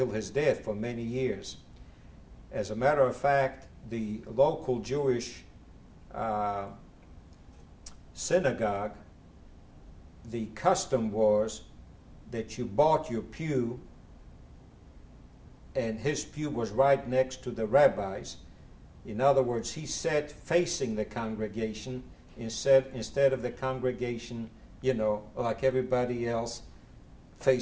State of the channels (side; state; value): both; identical; correlation 1.00